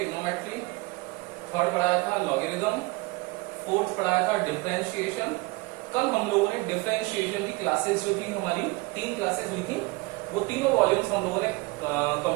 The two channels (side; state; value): left; quieter; 24.2 dB